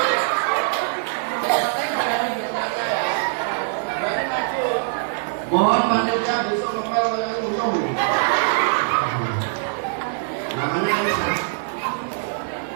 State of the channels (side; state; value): left; silent; 55 dB below the other